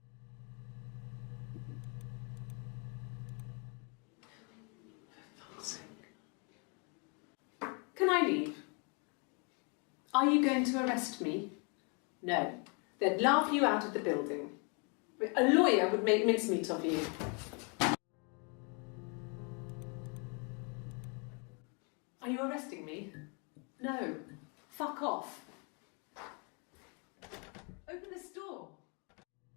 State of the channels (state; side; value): quieter; right; 35.2 dB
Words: Can I leave? Are you going to arrest me? No. They'd laugh you out of the building. A lawyer would make mincemeat of you. Are you arresting me? No. Fuck off. Open this door.